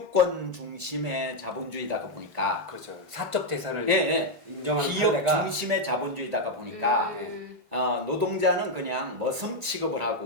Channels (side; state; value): both; normal; correlation 0.00